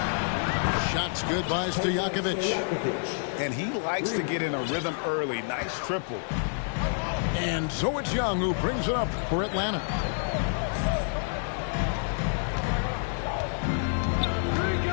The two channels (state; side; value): silent; right; digital silence